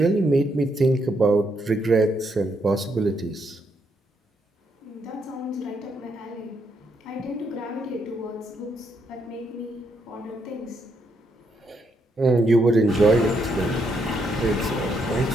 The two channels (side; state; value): both; normal; correlation 0.76